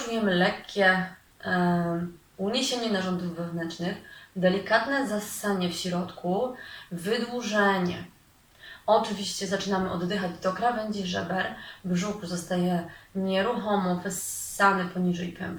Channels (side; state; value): both; identical; correlation 1.00